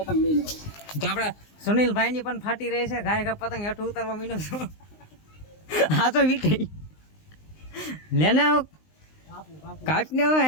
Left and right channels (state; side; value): late; right; 19 ms